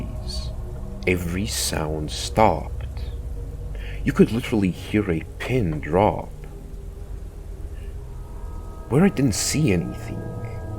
every sound stopped. You could literally hear a pin drop. Where I didn't see anything,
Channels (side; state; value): both; identical; correlation 1.00